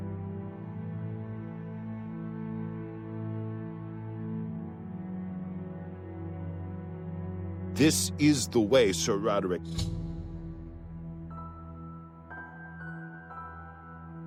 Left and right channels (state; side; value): identical; both; correlation 1.00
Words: This is the way, Sir Roderick.